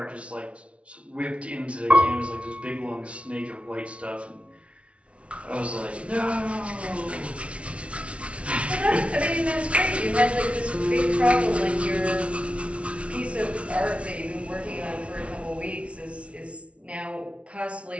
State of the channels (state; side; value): late; left; 0.061 ms